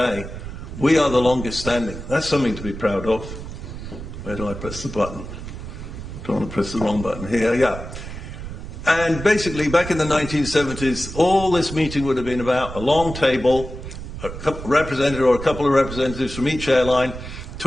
we are the longest standing. That's something to be proud of. Where do I press the button? Don't want to press the wrong button. Here, yeah. And basically, back in the 1970s, all this meeting would have been about a long table, a representative or a couple of representatives from each airline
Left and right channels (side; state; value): right; noise; rumble, 10 dB below the sound